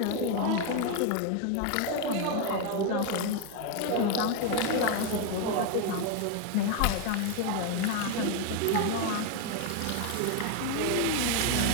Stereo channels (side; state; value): both; different; correlation 0.01